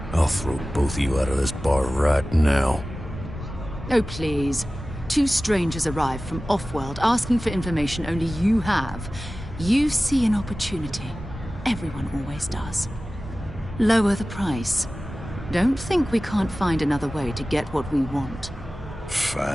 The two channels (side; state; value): both; normal; correlation 0.96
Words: I'll throw both of you out of this bar right now. Oh, please. 2 strangers arrive from off-world asking for information only you have. You see an opportunity. Everyone always does. Lower the price. Don't think we can't find another way to get what we want.